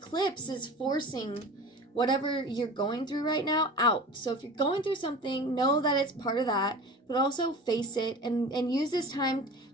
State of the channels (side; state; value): both; normal; correlation 0.37